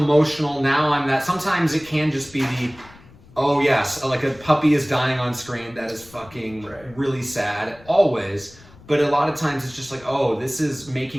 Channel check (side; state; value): left; noise; rumble, 23 dB below the sound